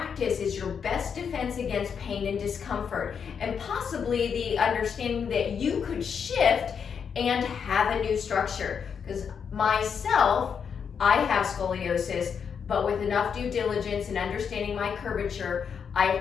is your best defense against pain and discomfort, and possibly the understanding that you could shift and have a new structure. Because myself, I have scoliosis, but with enough due diligence and understanding my curvature,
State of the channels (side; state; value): right; quieter; 6.9 dB